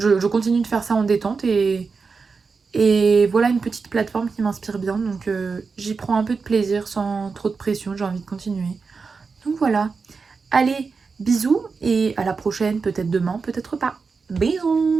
continue de faire ça en détente et voilà une petite plateforme qui m'inspire bien. Donc j'y prends un peu de plaisir sans trop de pression, j'ai envie de continuer. Donc voilà. Allez, bisous et à la prochaine, peut-être demain, peut-être pas.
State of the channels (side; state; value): left; quieter; 4.8 dB